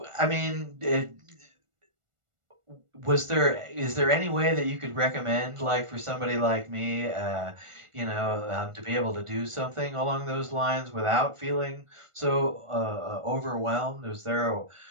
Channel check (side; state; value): left; late; 1.4 ms